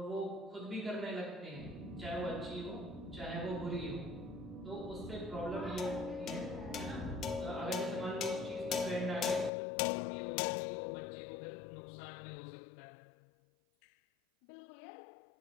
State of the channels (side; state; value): right; drops out; at 9.5 s